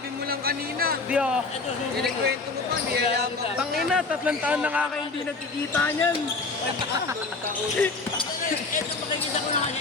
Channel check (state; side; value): quieter; right; 3.8 dB